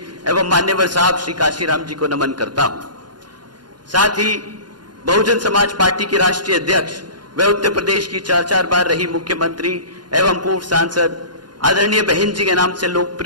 एवं मान्यवर साहब श्री काशीराम जी को नमन करता हूं। साथ ही बहुजन समाज पार्टी के राष्ट्रीय अध्यक्ष व उत्तर प्रदेश की 4 बार रही मुख्यमंत्री एवं पूर्व सांसद आदरणीय बहन जी के नाम से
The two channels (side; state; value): left; late; 0.71 ms